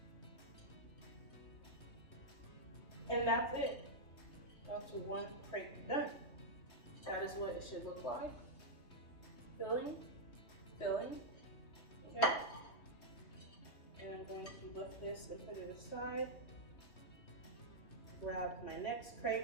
And that's it. That's one crepe done. That is what it should look like. Filling, filling, okay? And I'm going to lift this and put it aside. Grab my next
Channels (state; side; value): late; right; 3.2 ms